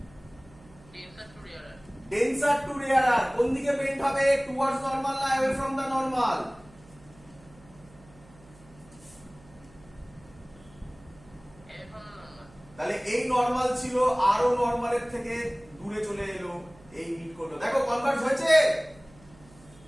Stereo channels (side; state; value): right; noise; hum, 24 dB below the sound